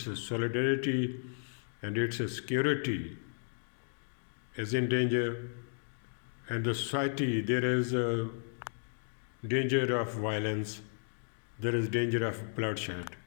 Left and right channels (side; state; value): right; silent; digital silence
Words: solidarity, and its security is in danger. And the society, there is a danger of violence, there is danger of bloodshed,